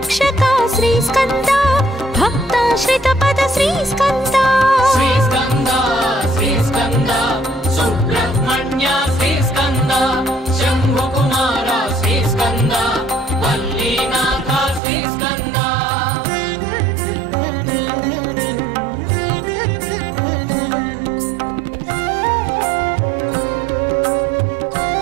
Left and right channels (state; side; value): drops out; left; at 14.8 s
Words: శ్రీ స్కంద భక్తాశ్రిత పద శ్రీ స్కంద శ్రీ స్కంద శ్రీ స్కంద సుబ్రహ్మణ్య శ్రీ స్కంద శంభు కుమార శ్రీ స్కంద వల్లీనాథ శ్రీ స్కంద